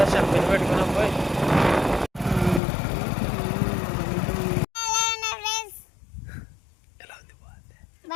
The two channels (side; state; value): right; drops out; at 2.6 s